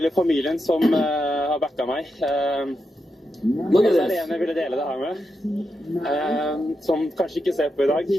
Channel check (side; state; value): both; normal; correlation 0.86